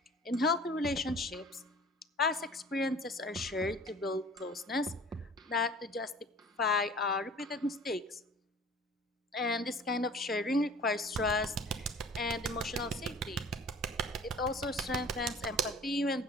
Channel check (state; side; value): normal; both; correlation 0.46